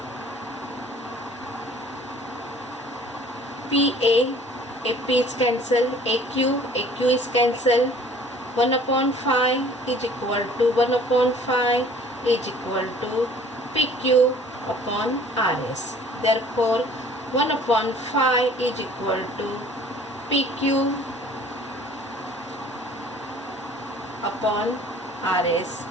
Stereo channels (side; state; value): both; normal; correlation 0.51